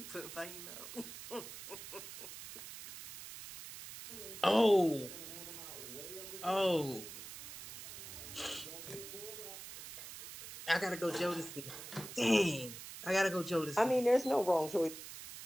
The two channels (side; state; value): right; noise; hiss, 11 dB below the sound